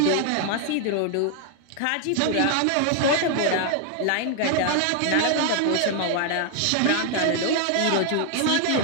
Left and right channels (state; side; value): different; both; correlation 0.00